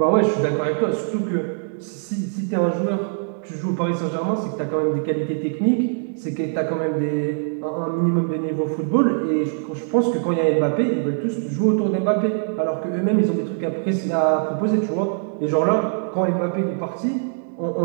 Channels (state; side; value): silent; left; digital silence